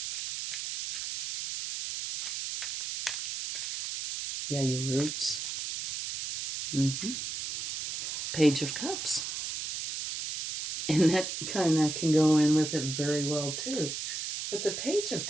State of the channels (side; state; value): right; noise; hiss, 4 dB below the sound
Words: Yeah, your roots. Page of Cups. And that kind of can go in with it very well, too. What the Page of